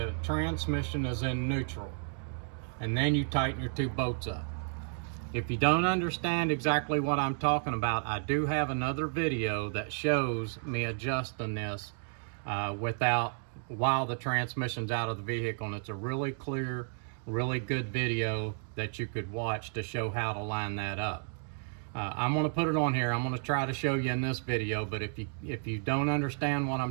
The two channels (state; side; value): silent; left; 56 dB below the other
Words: transmission is in neutral, and then you tighten your 2 bolts up. If you don't understand exactly what I'm talking about, I do have another video that shows me adjusting this without while the transmission's out of the vehicle, and it's a really clear, really good video that you could watch to show how to line that up. I'm going to put it on here. I'm going to try to show you in this video, but if you don't understand what